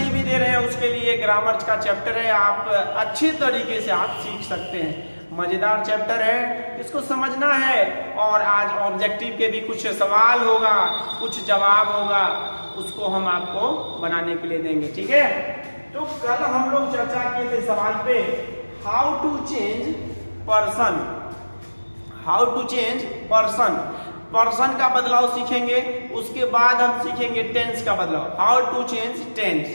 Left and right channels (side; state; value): both; inverted; correlation -1.00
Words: भी दे रहे हैं उसके लिए ग्रामर का चैप्टर है। आप अच्छे तरीके से आप सीख सकते हैं। मज़ेदार चैप्टर है, इसको समझना है। और आज ऑब्जेक्टिव के भी कुछ सवाल होगा, कुछ जवाब होगा, उसको हम आपको बनाने के लिए देंगे, ठीक है। तो कल हम लोग चर्चा किए थे सवाल पे, how to change person. How to change person, person का बदलाव सीखेंगे। उसके बाद हम सीखेंगे टेंस का बदलाव, हाउ टू चेंज टेंस।